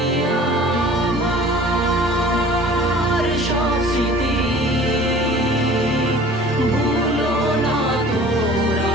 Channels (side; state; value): both; normal; correlation 0.46